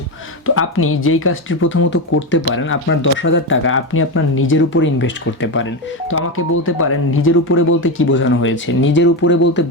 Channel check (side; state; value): both; normal; correlation 0.13